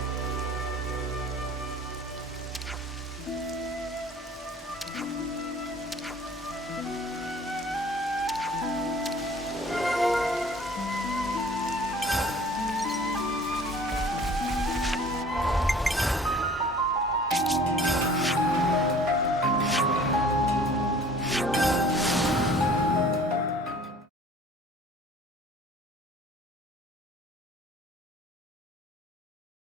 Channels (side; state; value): both; normal; correlation 0.49